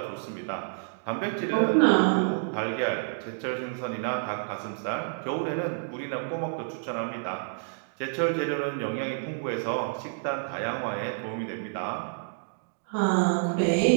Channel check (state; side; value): silent; left; digital silence